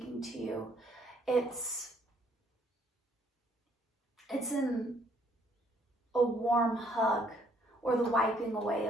to you. It's in a warm hug or the wiping away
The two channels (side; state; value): both; normal; correlation 0.66